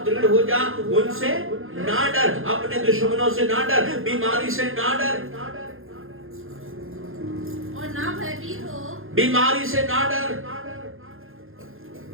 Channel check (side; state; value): left; late; 0.60 ms